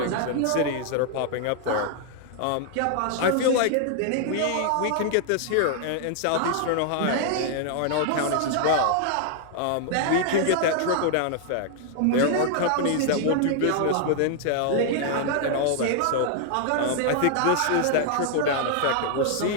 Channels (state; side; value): different; both; correlation 0.00